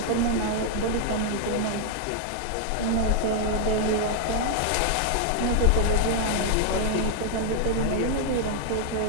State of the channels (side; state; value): both; different; correlation 0.00